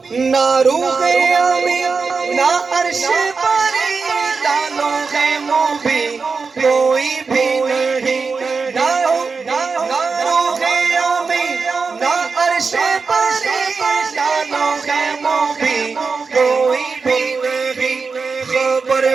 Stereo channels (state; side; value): quieter; left; 4.7 dB